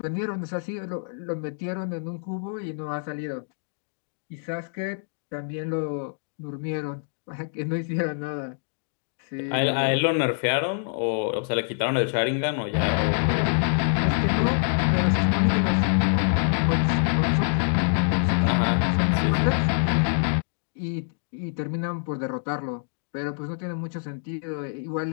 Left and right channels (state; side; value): silent; right; digital silence